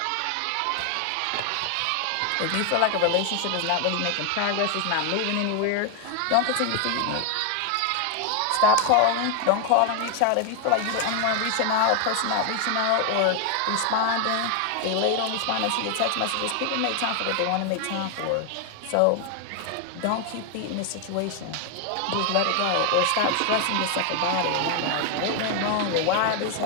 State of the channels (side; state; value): both; different; correlation 0.01